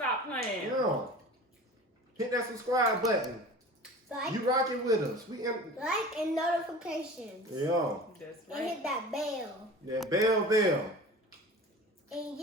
playing. Yeah. Hit that subscribe button. Like, You rocking with us. like and notifications. Yeah. That's And right. hit that bell. That bell. And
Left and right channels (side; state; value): both; normal; correlation 0.38